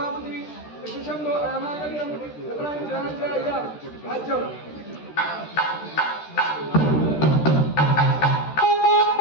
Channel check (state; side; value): late; right; 13 ms